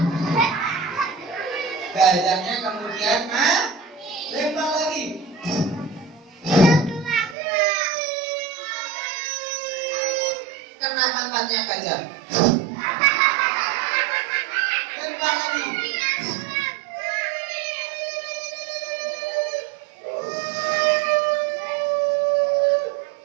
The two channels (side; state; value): left; drops out; at 7.4 s